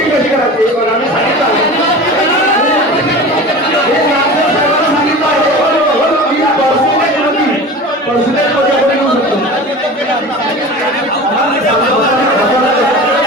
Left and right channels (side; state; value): both; normal; correlation 0.35